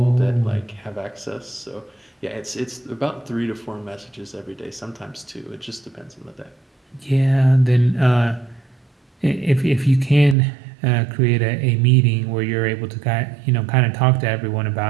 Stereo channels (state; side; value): drops out; left; at 10.4 s